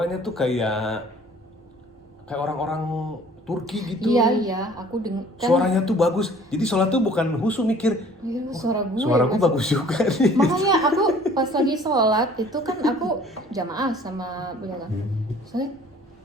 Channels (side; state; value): both; normal; correlation 0.52